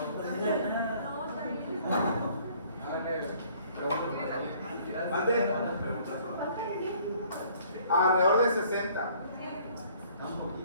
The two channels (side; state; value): both; inverted; correlation -0.58